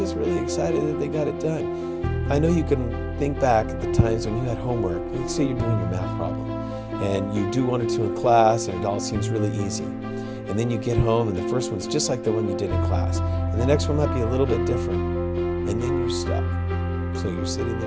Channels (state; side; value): identical; both; correlation 1.00